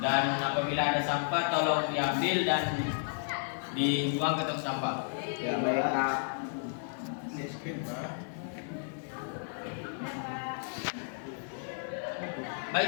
apabila ada sampah tolong diambil dan dibuang ke tong sampah. ya baik Pak. Miskin Pak.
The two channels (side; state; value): right; silent; 56 dB below the other